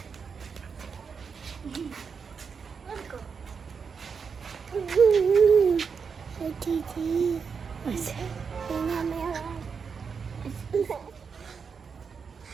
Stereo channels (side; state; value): left; quieter; 5.9 dB